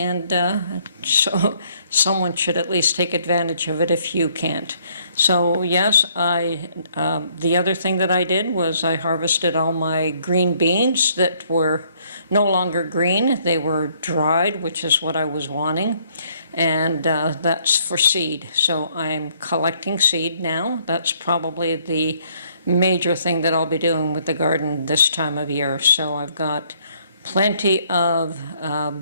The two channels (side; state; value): both; inverted; correlation -0.66